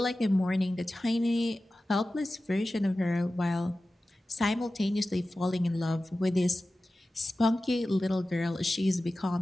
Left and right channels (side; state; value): both; normal; correlation 0.95